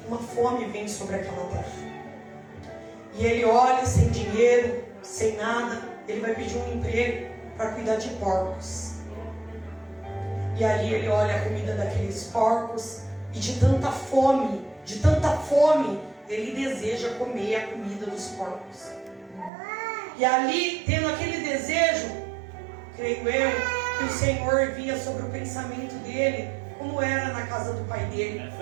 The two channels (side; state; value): left; drops out; at 19.5 s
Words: uma fome vem sobre aquela terra. E ele olha sem dinheiro, sem nada, ele vai pedir um emprego para cuidar de porcos. E ali ele olha a comida daqueles porcos, e de tanta fome, ele deseja comer a comida dos porcos. E ali, tendo aquele desejo, creio eu, que o Senhor via sobre o pensamento dele, como era na casa do pai dele.